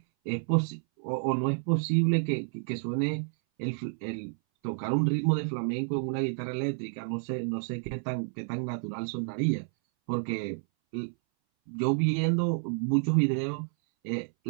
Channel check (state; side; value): silent; left; 58 dB below the other